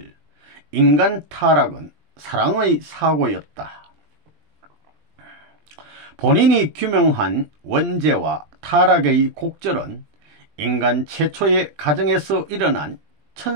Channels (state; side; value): late; left; 20 ms